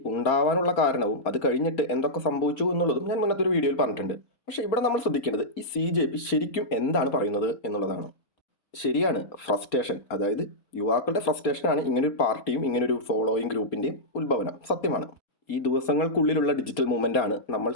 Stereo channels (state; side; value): late; right; 4.3 ms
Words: ഉണ്ടാവാനുള്ള കാരണവും അത് കഴിഞ്ഞിട്ട് എന്തൊക്കെ സംഭവിച്ചു എന്നുള്ളതും ഞാൻ മുന്നത്തെ ഒരു വീഡിയോയിൽ പറഞ്ഞിട്ടുണ്ട്. പക്ഷേ ഇവിടെ നമ്മൾ ശ്രദ്ധിക്കേണ്ടത് ഈ CJP ശരിക്കും എന്താണ് പറയുന്നത് എന്നുള്ളതാണ്. ശരിയാണ്, ഫ്രസ്ട്രേഷൻ, അതായത് യുവാക്കളുടെ ഫ്രസ്ട്രേഷനാണ് ഇങ്ങനൊരു പാർട്ടിയും ഇങ്ങനൊരു ഫോളോയിങ് ഗ്രൂപ്പിൻ്റെയും ഉത്ഭവനം. സത്യമാണ്. ഈ ദിവസങ്ങൾക്കുള്ളിലുള്ള ഡിജിറ്റൽ മൂവ്മെൻ്റ് ആണ് നമ്മൾ